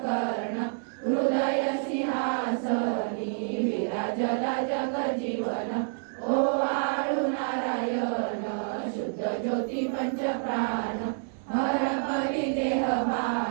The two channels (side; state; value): left; silent; digital silence